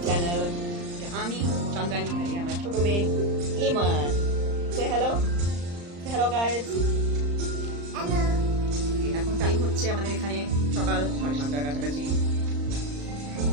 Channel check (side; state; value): left; late; 35 ms